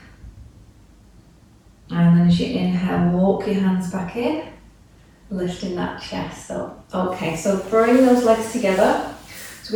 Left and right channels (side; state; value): both; identical; correlation 1.00